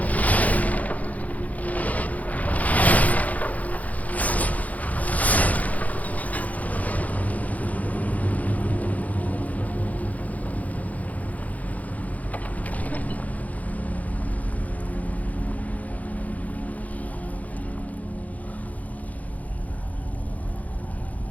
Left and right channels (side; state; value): right; late; 0.074 ms